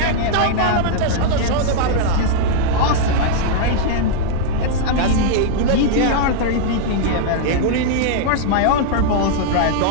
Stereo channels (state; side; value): different; both; correlation -0.01